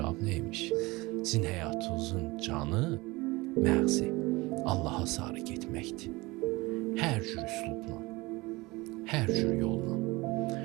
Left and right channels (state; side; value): quieter; left; 22.5 dB